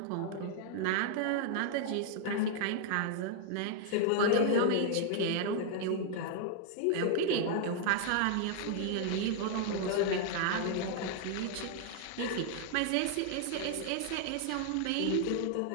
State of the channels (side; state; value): both; different; correlation 0.00